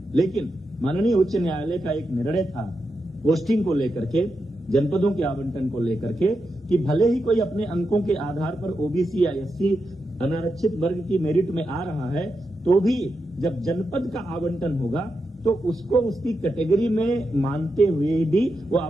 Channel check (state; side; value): normal; both; correlation 0.87